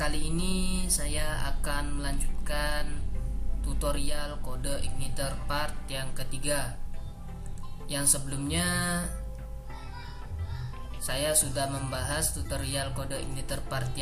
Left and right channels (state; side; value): identical; both; correlation 1.00